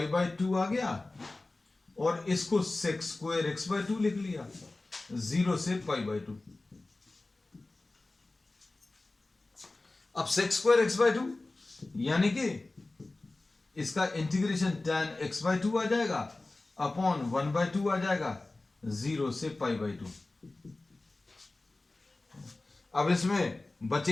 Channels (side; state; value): right; quieter; 3.1 dB